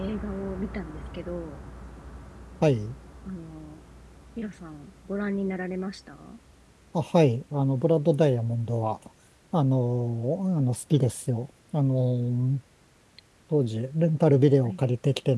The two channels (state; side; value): identical; both; correlation 1.00